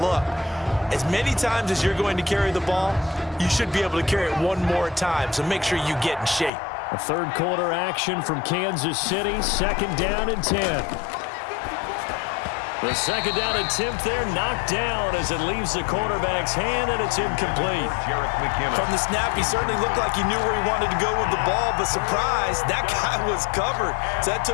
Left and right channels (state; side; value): drops out; right; at 6.5 s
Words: as many times as you're going to carry the ball, you should be able to carry it one more time, so make sure you get in shape. A 3rd quarter action from Kansas City. 2nd down and 10. The second down attempt there knocked down as it leaves the quarterback's hand, and it's incomplete. From the snap, he certainly looked like he knew where he wanted to go with the ball, but surprise, that guy was covered. So that